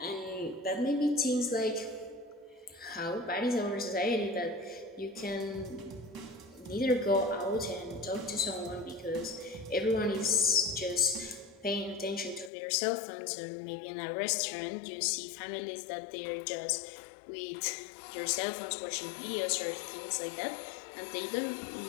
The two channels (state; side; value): drops out; right; at 12.5 s